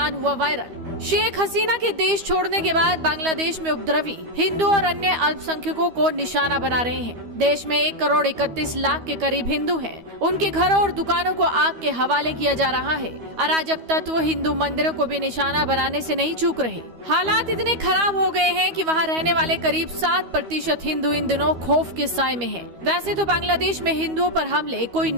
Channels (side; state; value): left; late; 13 ms